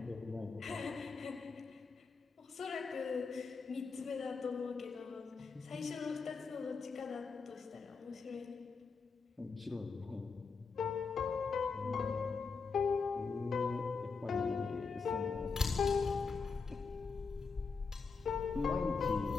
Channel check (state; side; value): quieter; right; 4.9 dB